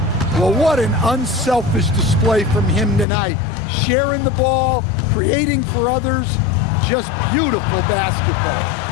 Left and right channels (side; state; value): right; drops out; at 3.1 s